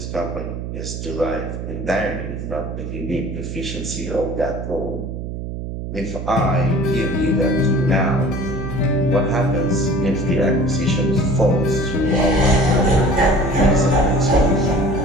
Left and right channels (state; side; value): noise; right; hum, 6 dB below the sound